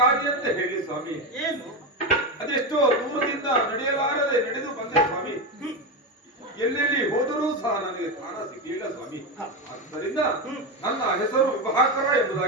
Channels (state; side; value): normal; both; correlation 0.14